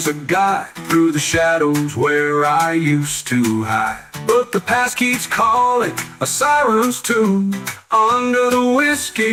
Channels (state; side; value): identical; both; correlation 1.00